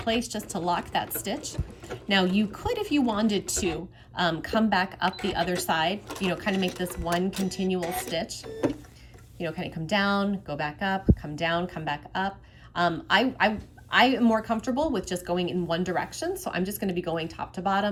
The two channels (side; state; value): both; identical; correlation 1.00